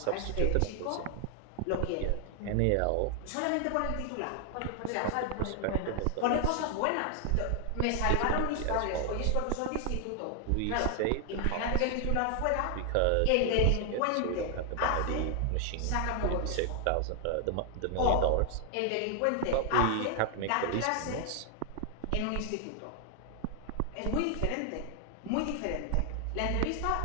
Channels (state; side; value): different; both; correlation 0.00